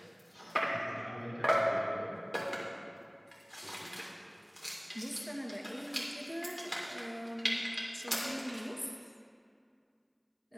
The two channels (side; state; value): both; identical; correlation 1.00